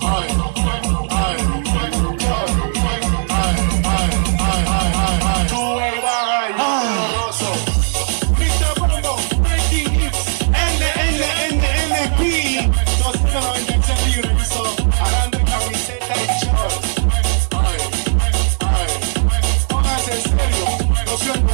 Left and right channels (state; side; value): silent; left; digital silence